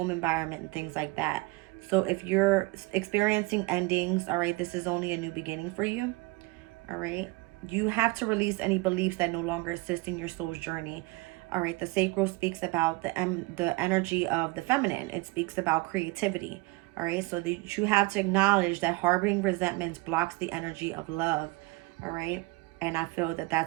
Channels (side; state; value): left; quieter; 23.0 dB